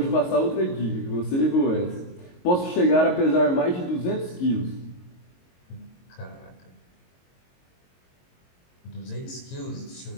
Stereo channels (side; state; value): right; late; 22 ms